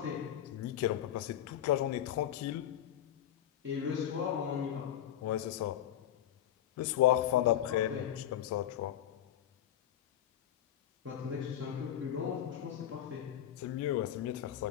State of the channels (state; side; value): quieter; right; 11.2 dB